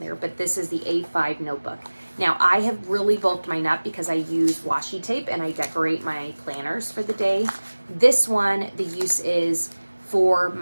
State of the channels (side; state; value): both; inverted; correlation -1.00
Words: But this is the A5 notebook. Now, I have really bulked mine up because I use washi tape and I decorate my planners for the day. This one, the use is for